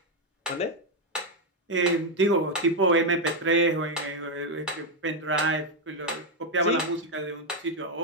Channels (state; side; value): normal; both; correlation 0.03